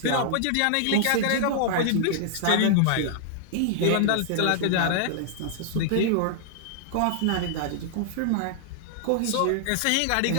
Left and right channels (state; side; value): different; both; correlation -0.01